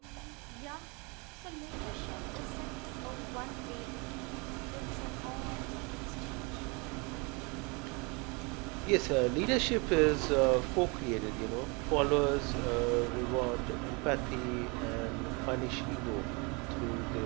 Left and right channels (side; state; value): left; quieter; 29.7 dB